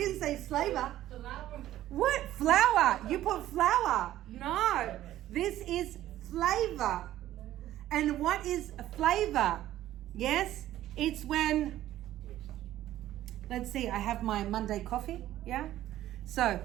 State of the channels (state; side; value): quieter; left; 13.6 dB